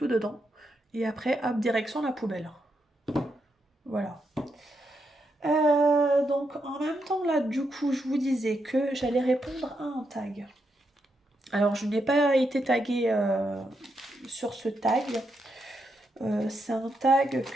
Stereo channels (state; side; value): normal; both; correlation 0.82